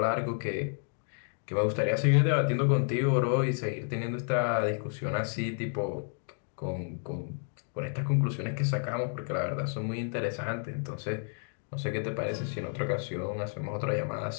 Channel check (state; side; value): silent; right; 57 dB below the other